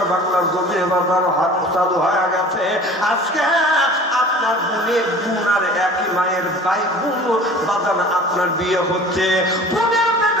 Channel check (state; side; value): normal; both; correlation 0.43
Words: বাংলার জমি বাজার হাত চালু হয়ে গেছে। আজকে আপনার বোনের বোন আর একই মায়ের ভাই বোন বাজান আপনার বিয়ে হচ্ছে। বোনের